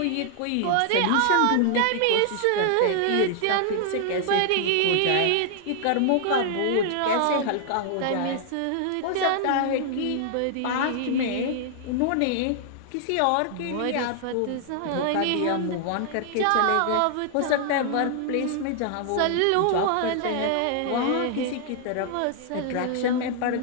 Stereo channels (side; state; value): both; different; correlation -0.01